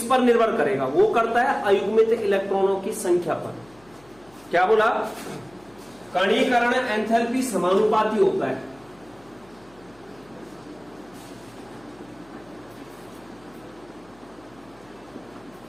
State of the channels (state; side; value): noise; left; hum, 28 dB below the sound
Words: पर निर्भर करेगा? वो करता है अयुग्मित इलेक्ट्रॉनों की संख्या पर। क्या बोला? कणीकरण एंथैल्पी समानुपाती होता है।